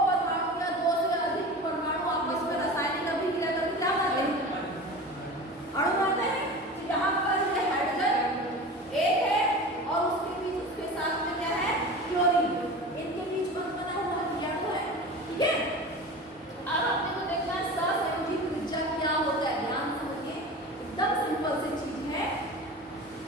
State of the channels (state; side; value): normal; both; correlation 0.33